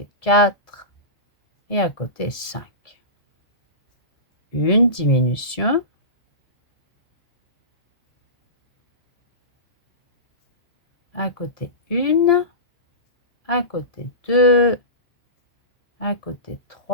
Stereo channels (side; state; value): right; late; 1.7 ms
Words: 4 et à côté 5. Une diminution. À côté 1, à côté 2, à côté